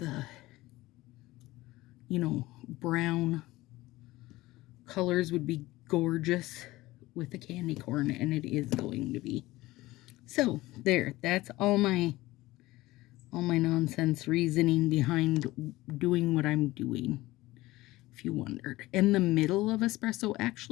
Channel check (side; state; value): right; quieter; 18.5 dB